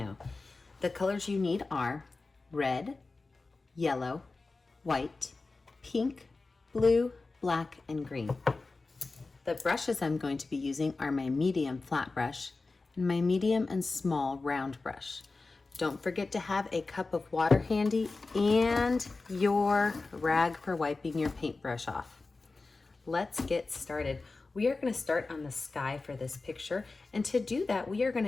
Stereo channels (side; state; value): right; quieter; 3.7 dB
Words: The colors you need are red, yellow, white, pink, blue, black, and green. The brushes I'm going to be using are my medium flat brush and my medium and small round brush. Don't forget to have a cup of water handy and your rag for wiping your paintbrush off. Let's get started. We are going to start on the sky for this picture, and to do that we are going